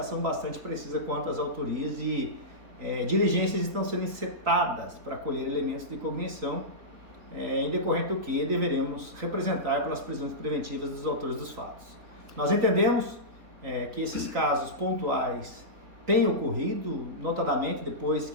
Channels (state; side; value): late; left; 3.9 ms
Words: bastante precisa quanto às autorias e diligências estão sendo encetadas para colher elementos de cognição, em decorrente do que deveremos representar pelas prisões preventivas dos autores dos fatos. Nós entendemos que esses casos pontuais têm ocorrido, notadamente depois